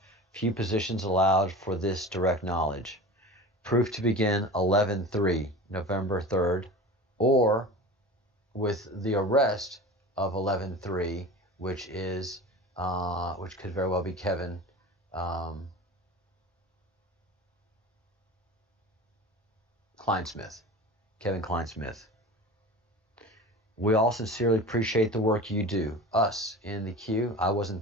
Few positions allowed for this direct knowledge. Proof to begin 11/3, November 3rd, or with the arrest of 11/3, which is which could very well be Kevin Kleinsmith. Kevin Kleinsmith. We all sincerely appreciate the work you do. Us in the queue. I wasn't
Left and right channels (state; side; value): normal; both; correlation 0.34